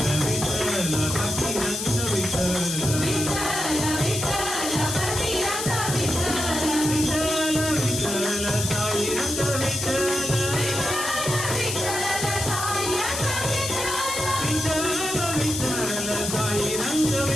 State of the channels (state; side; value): noise; left; hiss, 3 dB below the sound